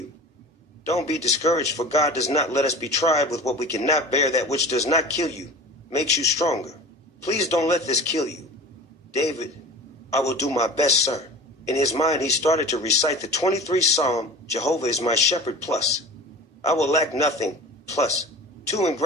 Don't be discouraged, for God does not let us be tried with what we cannot bear. That which does not kill you makes you stronger. Please don't let this kill you. David, I will do my best, sir. In his mind, he started to recite the 23rd Psalm, Jehovah is my shepherd, plus. I will lack nothing, plus. 2 in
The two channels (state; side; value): normal; both; correlation 0.37